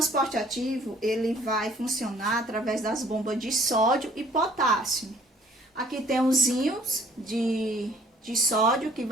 ativo, ele vai funcionar através das bombas de sódio e potássio. Aqui tem os íons de sódio que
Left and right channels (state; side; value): normal; both; correlation 0.57